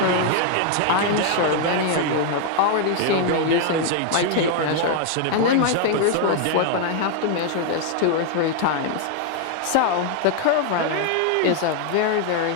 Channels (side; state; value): both; different; correlation 0.00